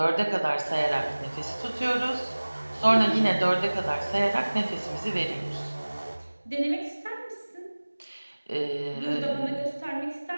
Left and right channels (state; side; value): inverted; both; correlation -1.00